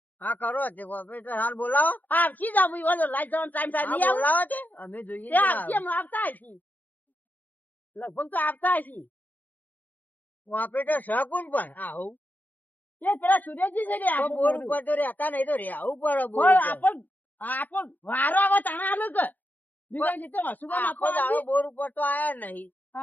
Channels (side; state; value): right; late; 0.083 ms